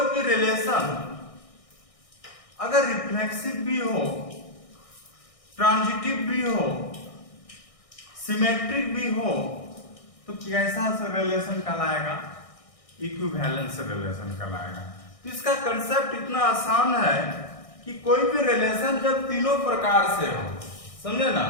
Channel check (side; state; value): right; late; 1.6 ms